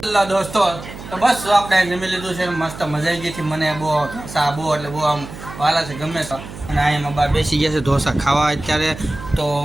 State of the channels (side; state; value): right; noise; hum, 14 dB below the sound